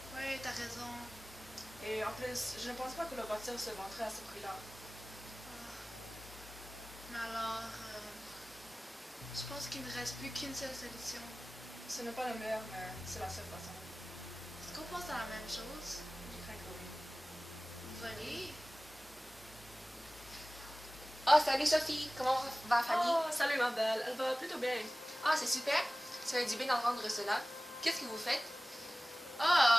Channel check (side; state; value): both; normal; correlation 0.98